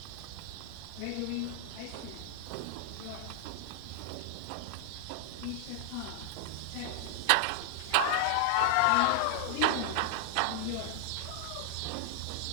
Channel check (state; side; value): different; both; correlation 0.00